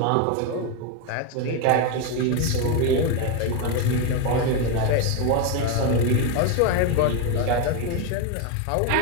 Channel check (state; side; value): different; both; correlation 0.02